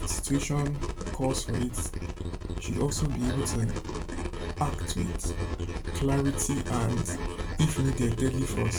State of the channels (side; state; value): both; identical; correlation 1.00